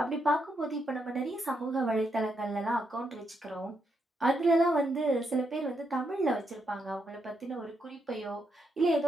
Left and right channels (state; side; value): normal; both; correlation 0.80